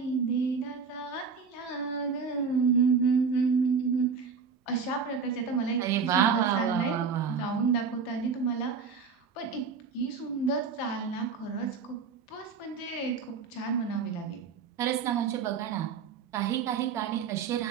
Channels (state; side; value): quieter; left; 5.7 dB